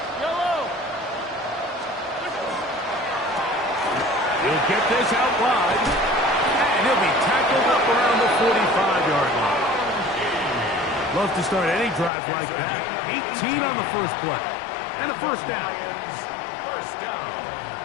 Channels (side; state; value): right; drops out; at 12.1 s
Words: He'll get this out wide, and he'll be tackled up around the 45-yard line. Love to start any drive like that. 18 on the first play, and a first down. First down.